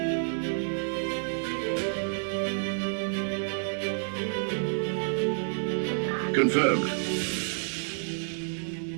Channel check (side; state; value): left; silent; 58 dB below the other